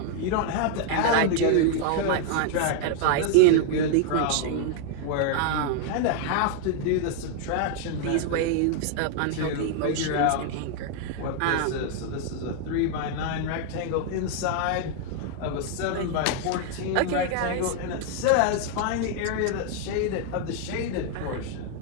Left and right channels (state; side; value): different; both; correlation 0.00